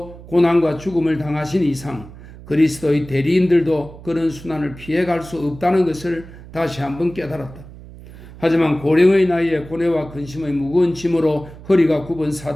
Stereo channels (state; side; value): noise; right; hum, 17 dB below the sound